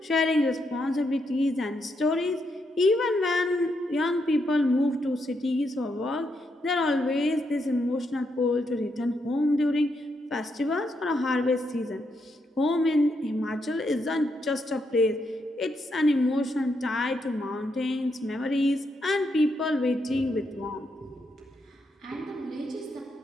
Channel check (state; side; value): normal; both; correlation 0.80